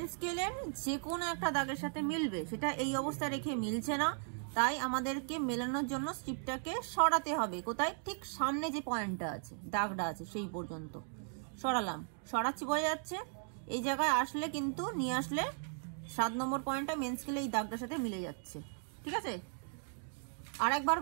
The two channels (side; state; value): left; silent; 53 dB below the other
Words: স্কেলের যে কোনো একটা দাগের সাথে মিলবে। সেটা এই অবস্থায় রেখে মিলছে না, তাই আমাদেরকে মেলানোর জন্য স্ট্রিপটাকে সরাতে হবে। কোথায়? ঠিক সামনে যে পয়েন্টটা আছে, দাগটা আছে, সেই পর্যন্ত সরালাম। সরাচ্ছি, বোঝা যাচ্ছে? এই জায়গায় আসলে কিন্তু নিয়ে আসলে 7 নম্বর পয়েন্টটা মেন স্কেলে এই দাগটার সাথে মিলে যাচ্ছে। ঠিক আছে, আর একবার